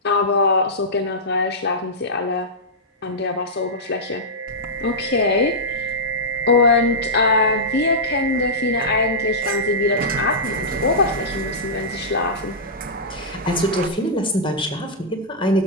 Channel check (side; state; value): both; normal; correlation -0.13